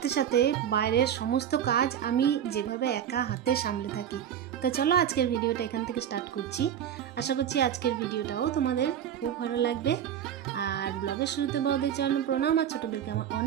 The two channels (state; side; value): quieter; left; 9.6 dB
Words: সাথে বাইরের সমস্ত কাজ আমি যেভাবে একা হাতে সামলে থাকি। তো চলো আজকের ভিডিওটা এখান থেকে স্টার্ট করছি। আশা করছি আজকের ভিডিওটাও তোমাদের খুব ভালো লাগবে। আর ব্লগের শুরুতে বড়দের চরণে প্রণাম, আর ছোটদেরকে আমার